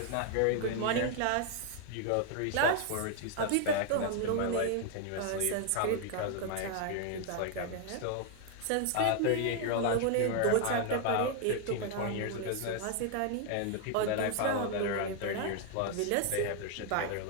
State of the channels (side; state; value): both; different; correlation 0.00